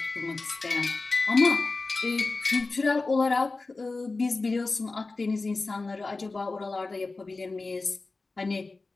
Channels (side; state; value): right; quieter; 3.6 dB